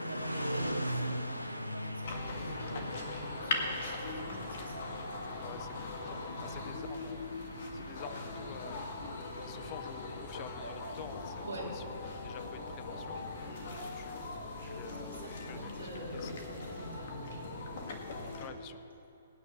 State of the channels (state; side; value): inverted; both; correlation -0.64